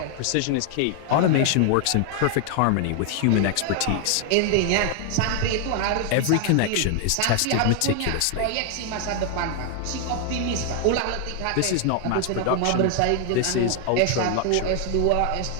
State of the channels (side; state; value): both; different; correlation 0.00